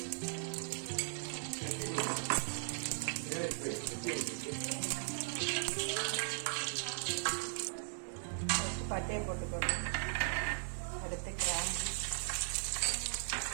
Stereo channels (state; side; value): silent; left; 52 dB below the other